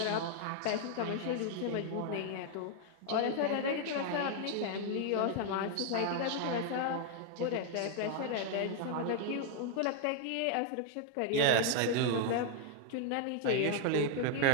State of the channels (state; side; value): different; both; correlation -0.01